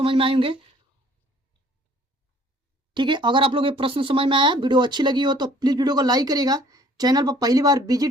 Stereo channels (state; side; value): normal; both; correlation 0.56